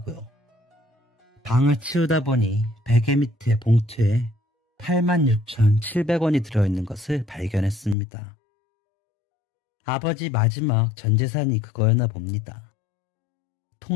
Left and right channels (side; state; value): right; drops out; at 8.0 s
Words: 방을 치우다 보니 베개 밑에 봉투에 86,700원이 들어있는 것을 발견했습니다. 아버지 마지막 전재산이 그거였나 봅니다.